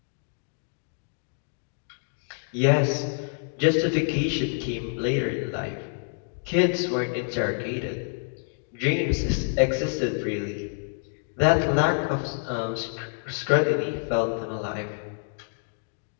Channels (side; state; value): right; silent; digital silence